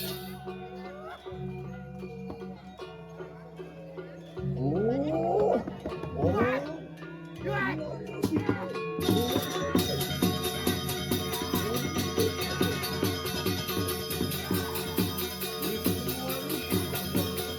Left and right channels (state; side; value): identical; both; correlation 1.00